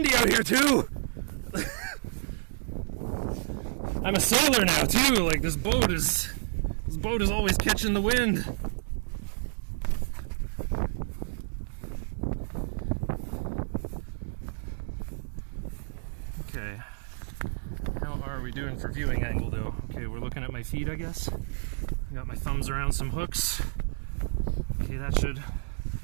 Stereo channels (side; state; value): left; silent; digital silence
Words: out here too! I'm a sailor now too, like this boat is always catching the wind. Okay. How are we doing for viewing angle though? Okay, we're looking at my feet, I guess. I got my thumbs around some hooks. Okay, that should